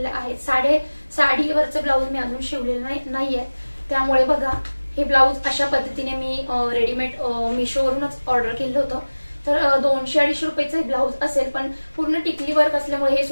आहे। साडीवरचं ब्लाऊज मी अजून शिवलेलं नाहीये, त्यामुळे बघा हे ब्लाऊज अशा पद्धतीने मी रेडीमेड मीशोवरूनच ऑर्डर केलं होतं। तर 200-250 रुपयाचं हे ब्लाऊज असेल, पण पूर्ण टिकली वर्क असल्यामुळे हे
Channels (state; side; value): inverted; both; correlation -1.00